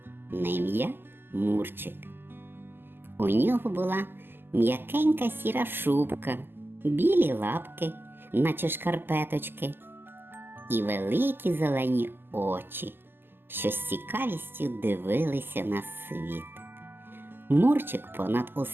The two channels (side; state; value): left; late; 0.098 ms